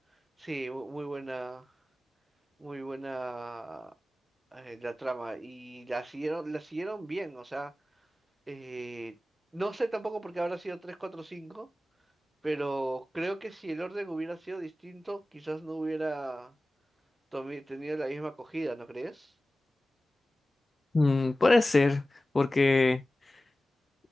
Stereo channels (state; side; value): normal; both; correlation 0.96